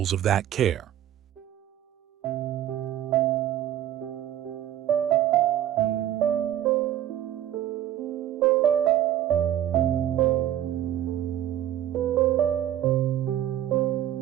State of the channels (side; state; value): left; quieter; 11.8 dB